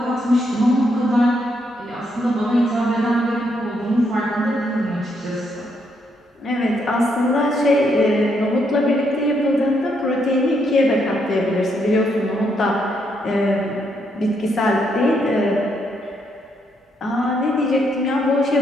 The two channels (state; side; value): normal; both; correlation 0.76